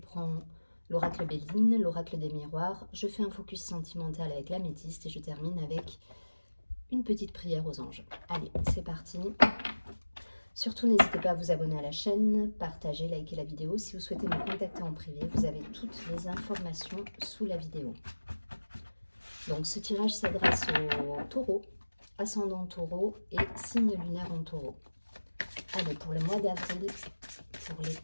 l'oracle Béline, l'oracle des miroirs. Je fais un focus sentimental avec l'améthyste et je termine avec une petite prière aux anges. Allez, c'est parti. Surtout, n'hésitez pas à vous abonner à la chaîne, partager, liker la vidéo. Si vous souhaitez me contacter en privé, vous avez toutes les informations sous la vidéo. Donc, ce tirage s'adresse aux taureaux, ascendant taureau et signe lunaire en taureau. Allez, pour le mois d'avril, pour les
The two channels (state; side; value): inverted; both; correlation -1.00